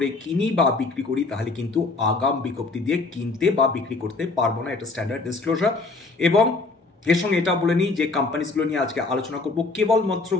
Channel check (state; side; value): quieter; right; 3.7 dB